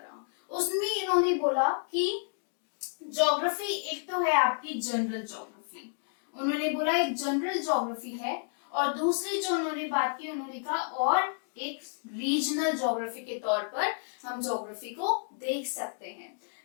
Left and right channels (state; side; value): silent; right; digital silence